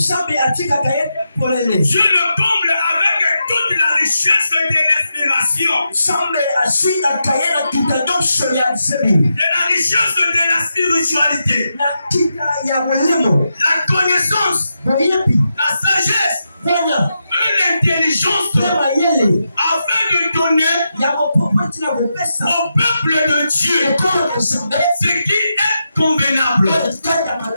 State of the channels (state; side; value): inverted; both; correlation -0.86